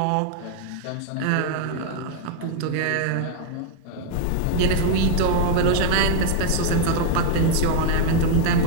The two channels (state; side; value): different; both; correlation 0.00